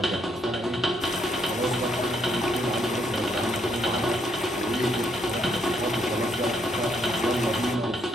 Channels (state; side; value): normal; both; correlation 0.73